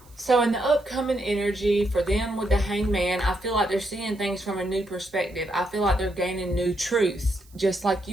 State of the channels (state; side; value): noise; right; hiss, 28 dB below the sound